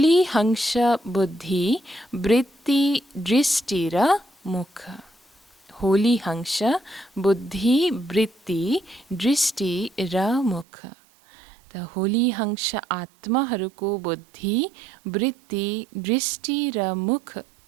हंस बुद्धि वृत्ति दृष्टि र मुख। होली हंस बुद्धि वृत्ति दृष्टि र मुख। त होली हंस आत्माहरूको बुद्धि वृत्ति दृष्टि र मुख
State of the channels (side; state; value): left; drops out; at 10.7 s